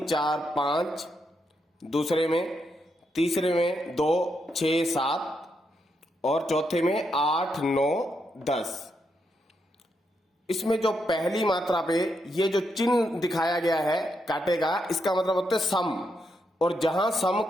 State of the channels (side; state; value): both; normal; correlation 0.81